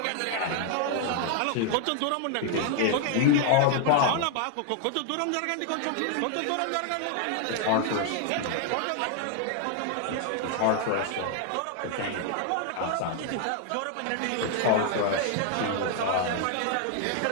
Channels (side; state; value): both; different; correlation 0.00